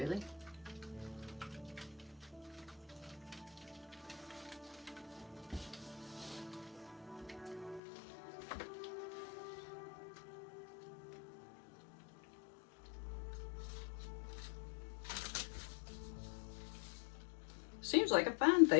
Seems like a fine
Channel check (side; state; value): right; drops out; at 7.8 s